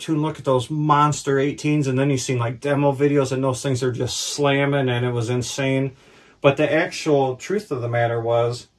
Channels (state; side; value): identical; both; correlation 1.00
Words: tune, look at those monster 18s, and then you seen like demo videos and those things are just slamming, and it was insane. But the actual truth of the matter